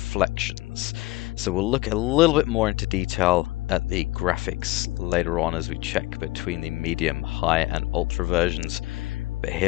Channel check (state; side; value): quieter; right; 19.7 dB